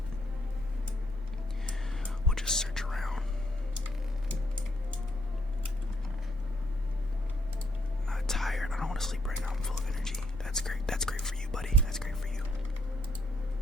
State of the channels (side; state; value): both; normal; correlation 0.71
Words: we'll just search around. Not tired. I don't want to sleep right now. I'm full of energy. That's great. That's great for you, buddy. That's great for you.